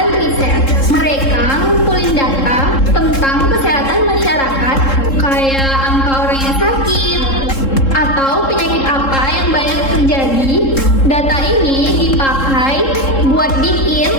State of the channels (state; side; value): late; right; 3.7 ms